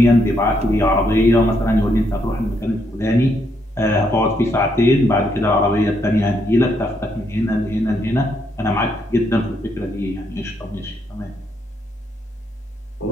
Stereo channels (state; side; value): normal; both; correlation 0.75